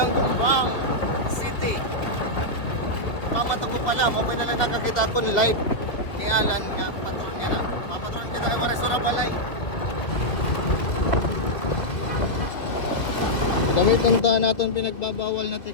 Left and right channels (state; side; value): late; right; 2.1 ms